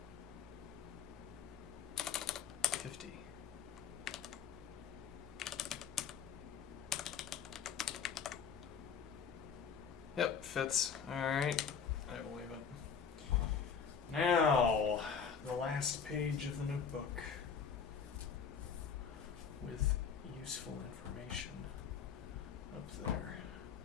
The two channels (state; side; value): quieter; right; 6.7 dB